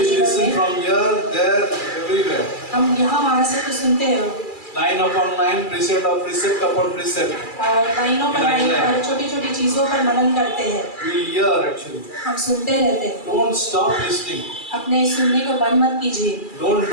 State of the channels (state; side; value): late; right; 2.3 ms